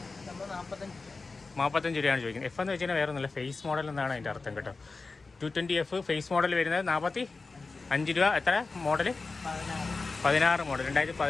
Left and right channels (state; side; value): quieter; right; 3.9 dB